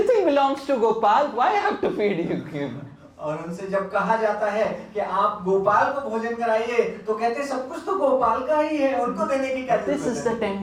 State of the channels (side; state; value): both; identical; correlation 1.00